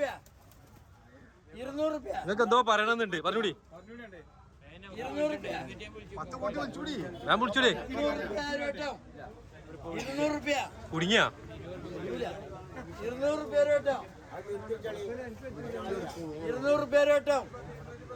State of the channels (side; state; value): both; identical; correlation 1.00